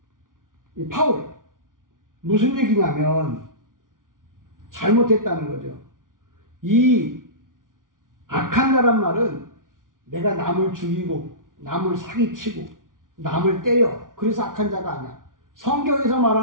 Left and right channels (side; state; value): left; late; 0.89 ms